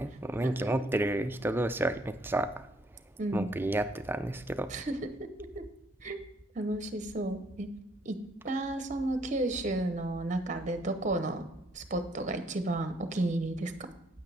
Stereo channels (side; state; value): both; normal; correlation 0.67